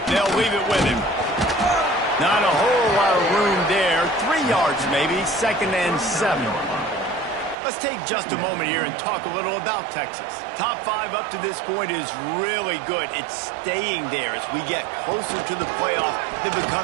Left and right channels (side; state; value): left; drops out; at 7.6 s